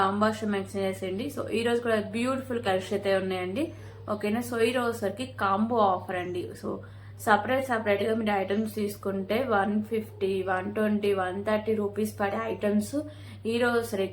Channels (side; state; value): both; identical; correlation 1.00